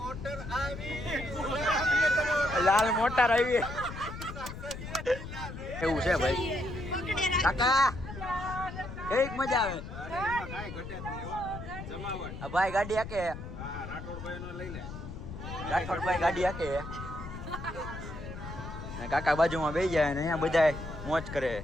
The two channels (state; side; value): noise; left; rumble, 10 dB below the sound